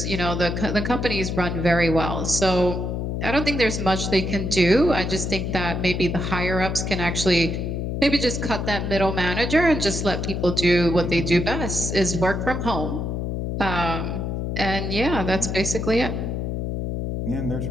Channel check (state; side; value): noise; left; hum, 2 dB below the sound